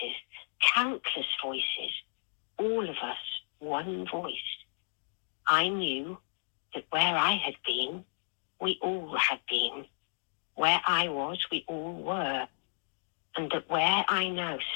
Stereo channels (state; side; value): silent; right; digital silence